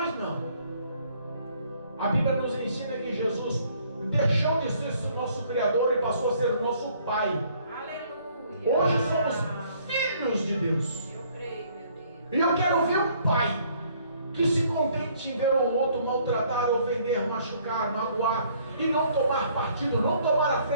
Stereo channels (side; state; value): both; inverted; correlation -0.62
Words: não. A Bíblia nos ensina que Jesus deixou de ser o nosso Criador e passou a ser o nosso Pai. Aleluia. Hoje somos filhos de Deus. Eu creio, meu Deus. E eu quero ver um pai que se contente em ver o outro maltratar, ofender, machucar, magoar e não tomar partido, não tomar a